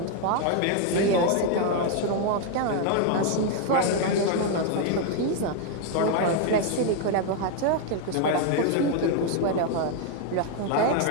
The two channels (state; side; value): different; both; correlation 0.00